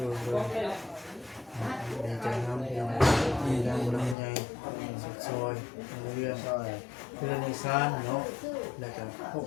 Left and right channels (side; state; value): right; drops out; at 4.2 s